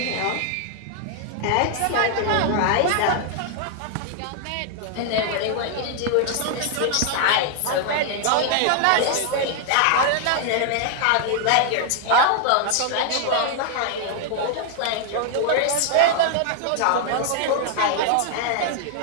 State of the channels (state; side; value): different; both; correlation 0.00